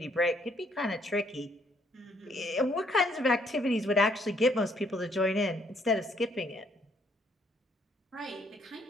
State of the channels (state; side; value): normal; both; correlation 0.68